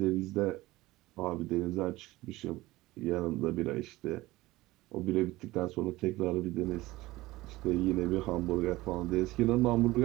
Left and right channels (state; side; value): quieter; left; 18.8 dB